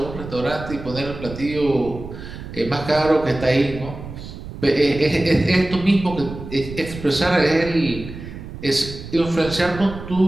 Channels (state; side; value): noise; right; rumble, 12 dB below the sound